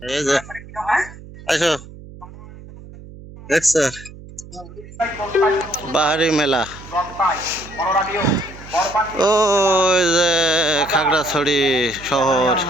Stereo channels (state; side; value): noise; right; hum, 17 dB below the sound